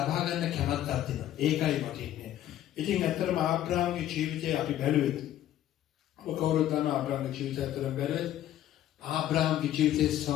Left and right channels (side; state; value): right; quieter; 12.3 dB